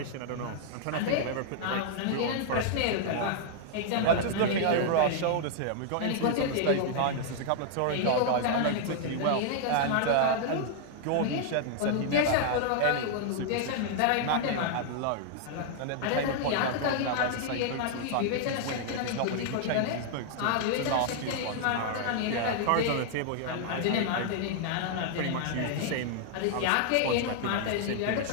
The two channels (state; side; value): different; both; correlation -0.01